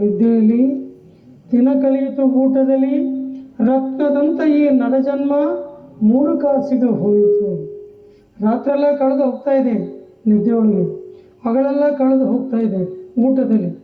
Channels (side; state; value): both; identical; correlation 1.00